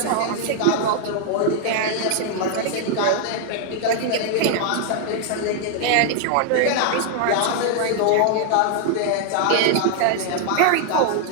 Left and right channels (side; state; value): both; different; correlation 0.00